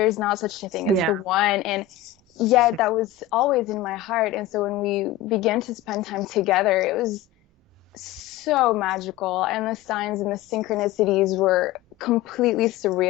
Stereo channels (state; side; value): quieter; right; 12.5 dB